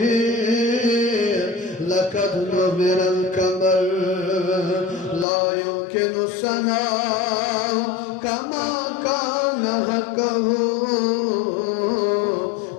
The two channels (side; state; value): right; drops out; at 5.2 s